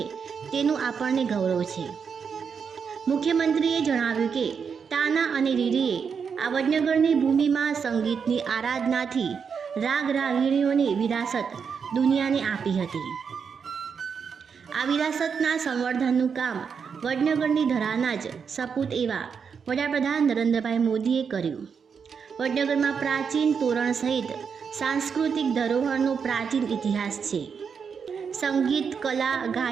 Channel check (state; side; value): quieter; left; 6.3 dB